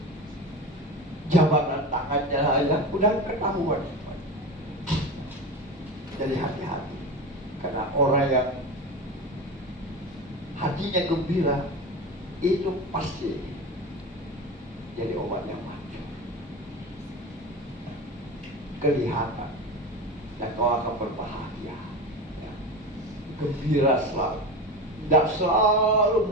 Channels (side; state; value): both; normal; correlation 0.26